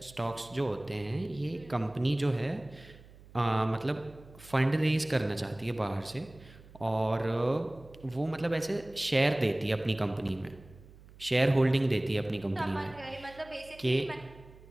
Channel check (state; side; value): noise; right; hum, 22 dB below the sound